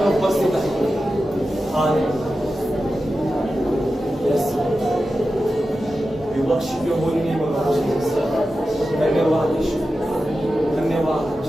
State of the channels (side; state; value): both; normal; correlation 0.92